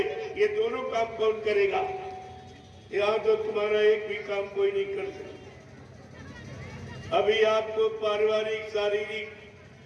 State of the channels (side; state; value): both; identical; correlation 1.00